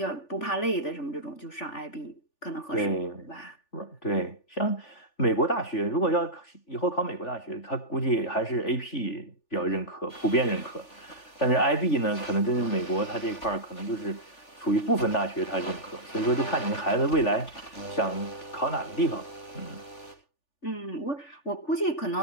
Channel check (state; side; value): late; right; 3.4 ms